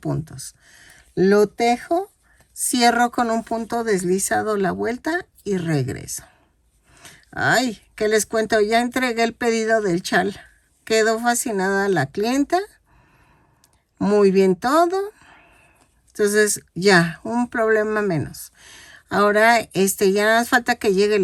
Lo tejo, cierro con un punto deslizado la vuelta y regreso. Ay, ¿qué les cuento? Ya entregué el pedido del chal. Quedó fascinada la clienta. Muy bien todo. Entonces ya, un problema menos. Ahora ya nada más falta que llegue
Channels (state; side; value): identical; both; correlation 1.00